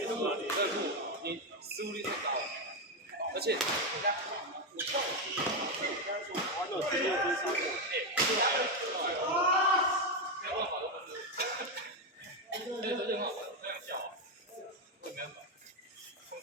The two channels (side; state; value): both; normal; correlation 0.07